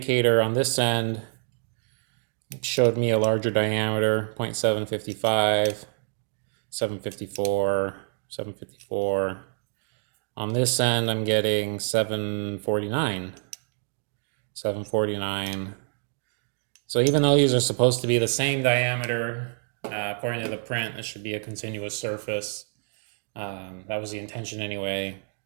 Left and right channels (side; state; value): left; silent; 60 dB below the other